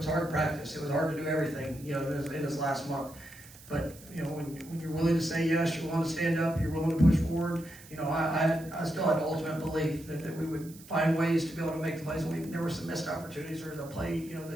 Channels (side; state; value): right; noise; hiss, 20 dB below the sound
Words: hard to practice. It was hard to do everything, in this last month. But when you're willing to say yes, you're willing to stand up, you're willing to push forward. I still had ultimate belief that we would find ways to be able to make the plays. There were some missed opportunities or the play,